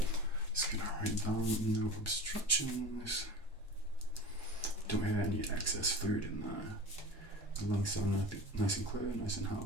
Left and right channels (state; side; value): normal; both; correlation 0.34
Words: Just gonna write down no obstructions. Don't hear any excess fluid in there. The lungs sound nice and clear, nice and